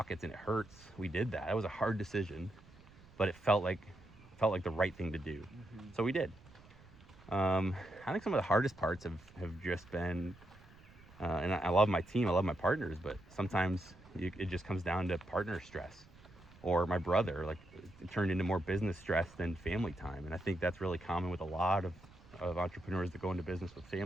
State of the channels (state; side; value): noise; right; rumble, 23 dB below the sound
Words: and it hurts, we did that. It was a hard decision, but it felt like the right thing to do. Mm-hmm. So we did. I think some of the hardest parts have just been, and I love my team, I love my partners, but sometimes it just comes down to partner stress. Or my brother, it turned into more business stress than family time. And I think that's really common with a lot of entrepreneurs that go into business with